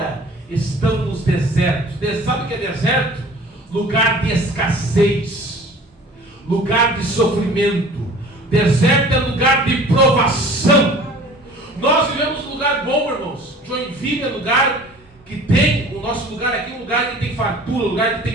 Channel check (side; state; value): both; normal; correlation 0.46